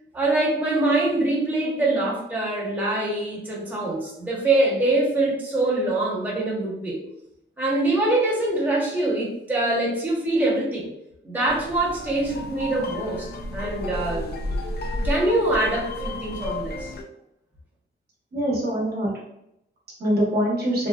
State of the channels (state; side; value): normal; both; correlation 0.51